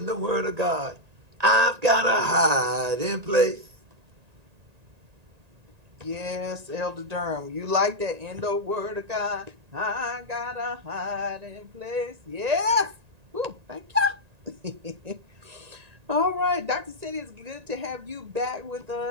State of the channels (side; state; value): left; late; 1.9 ms